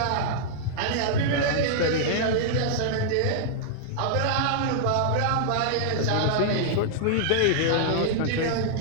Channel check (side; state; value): both; different; correlation -0.01